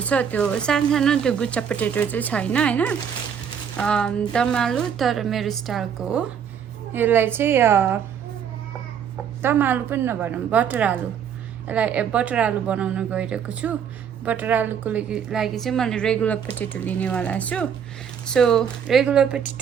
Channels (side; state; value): left; quieter; 7.9 dB